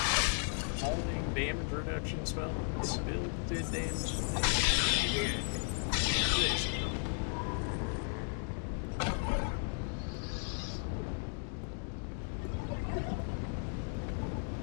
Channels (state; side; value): silent; right; 54 dB below the other